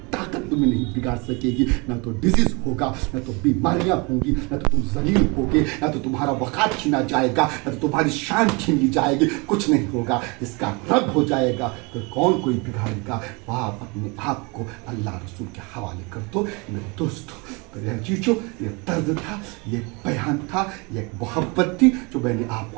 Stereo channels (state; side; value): quieter; left; 28.8 dB